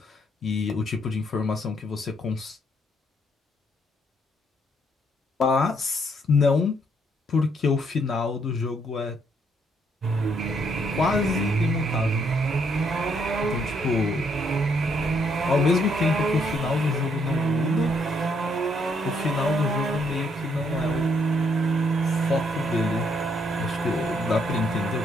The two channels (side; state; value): both; normal; correlation 0.71